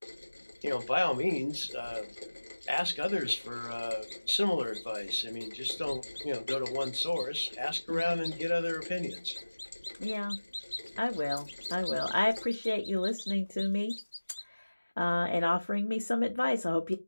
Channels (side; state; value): both; inverted; correlation -1.00